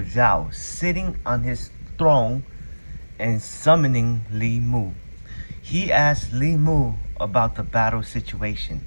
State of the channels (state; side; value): inverted; both; correlation -1.00